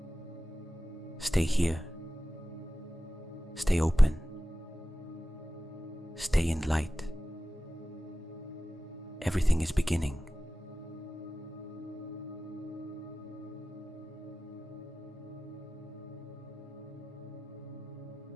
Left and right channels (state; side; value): normal; both; correlation 0.95